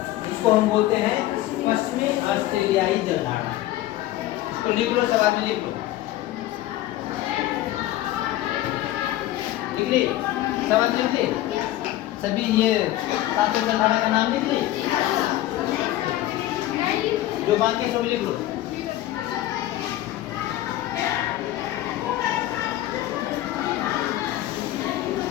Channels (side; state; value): right; quieter; 14.8 dB